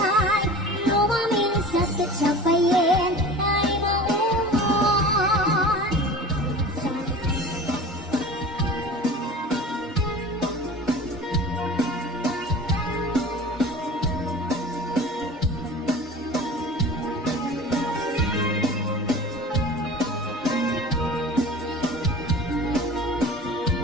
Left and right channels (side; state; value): both; normal; correlation 0.38